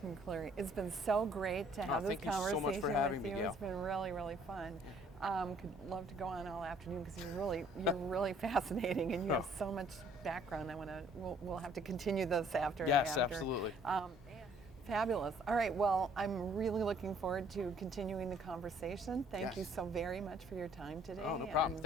McCleary. It's been so great to have this conversation with you. It's been really, really fun. Could love to go on all afternoon because you're really fascinating, and you have so much background. We'll have to continue this after. Yes, absolutely. Fabulous. All right. Well, I'm really looking forward to continuing the conversation. Thank you so very much for your time today. Oh, no problem.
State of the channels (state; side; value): normal; both; correlation 0.60